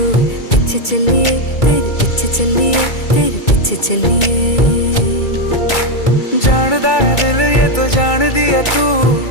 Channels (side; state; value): right; late; 2.3 ms